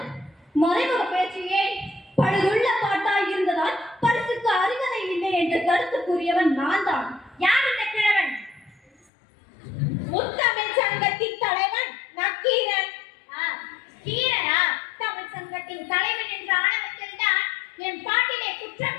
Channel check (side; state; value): right; drops out; at 9.1 s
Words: மறைமுக பேச்சியே. பழுதுள்ள பாட்டாய் இருந்ததால் பரிசுக்கு அருகதை இல்லை என்று கருத்து கூறியவன் நான் தான். யார் இந்த கிழவன்? முத்தமிழ் சங்கத்தின் தலைவன் நக்கீரன். கீரனா? தமிழ் சங்கத்தின் தலைவன் என்ற ஆணவத்தில் தான் என் பாட்டிலே குற்றம்